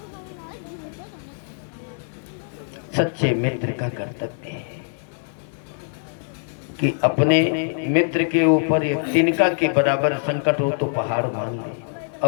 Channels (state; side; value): silent; right; 63 dB below the other